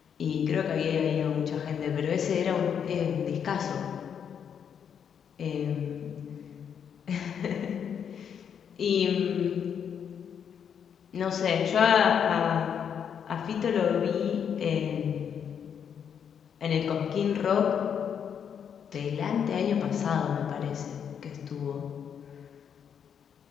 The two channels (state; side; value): quieter; right; 7.9 dB